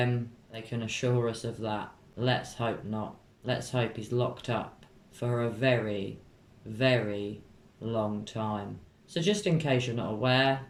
They can assure us of that. Let's hope not. Let's hope he's locked up for a very long time. So just in case you're not aware,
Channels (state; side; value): identical; both; correlation 1.00